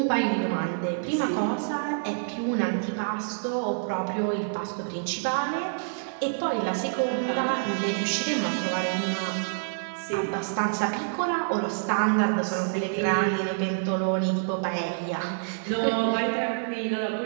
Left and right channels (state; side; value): silent; left; digital silence